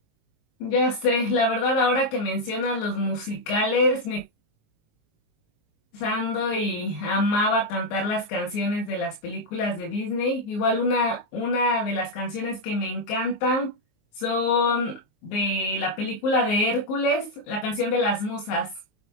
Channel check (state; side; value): late; right; 19 ms